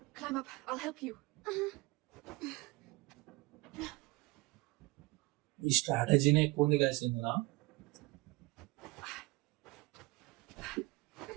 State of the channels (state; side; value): quieter; left; 22.5 dB